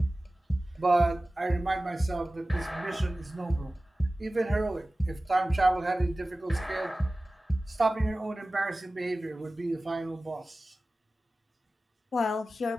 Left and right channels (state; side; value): normal; both; correlation 0.97